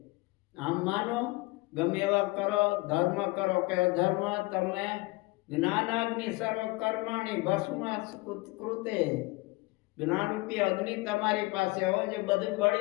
આમ માનો ગમે એવા કરો, ધર્મ કરો કે અધર્મ, તમે જ્ઞાનાગ્નિ સર્વ કર્માણી ભસ્મ કૃતે. જ્ઞાનરૂપી અગ્નિ તમારી પાસે હોય જે બધું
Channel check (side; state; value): right; quieter; 23.0 dB